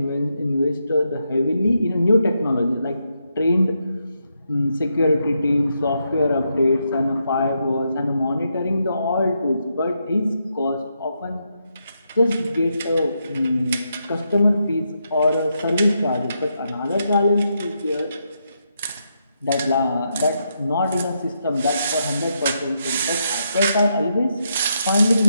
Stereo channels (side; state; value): both; inverted; correlation -0.81